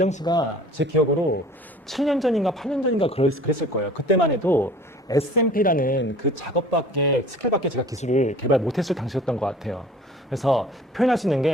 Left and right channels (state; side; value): normal; both; correlation 0.47